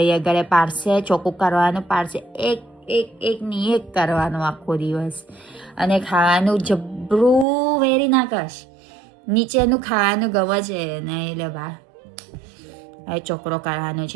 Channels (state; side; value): drops out; left; at 7.5 s